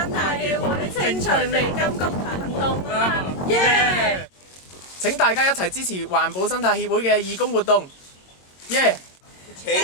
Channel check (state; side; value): late; right; 22 ms